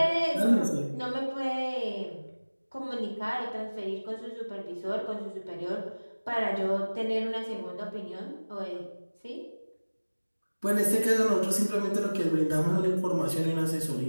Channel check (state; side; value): inverted; both; correlation -1.00